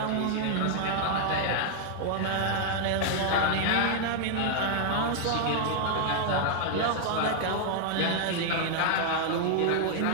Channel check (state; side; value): different; both; correlation 0.00